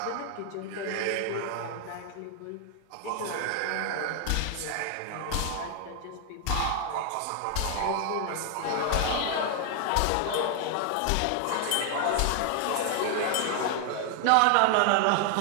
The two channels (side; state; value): both; different; correlation 0.00